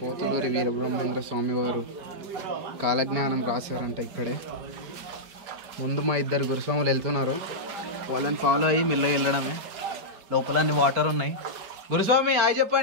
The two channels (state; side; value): late; left; 4.6 ms